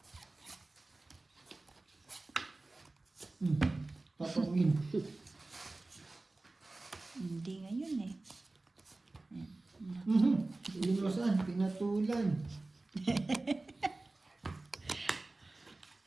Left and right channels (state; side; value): quieter; left; 3.1 dB